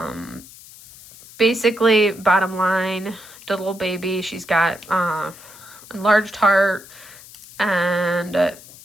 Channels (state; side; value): noise; left; hiss, 19 dB below the sound